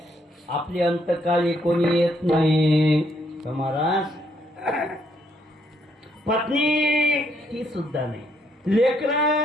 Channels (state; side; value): normal; both; correlation 0.72